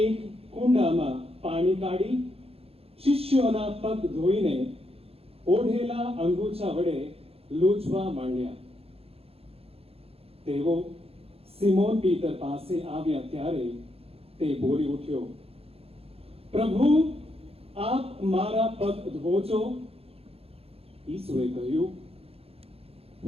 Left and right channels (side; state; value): left; late; 0.28 ms